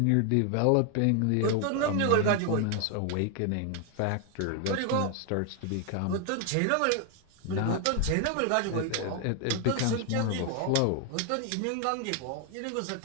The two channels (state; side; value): different; both; correlation 0.00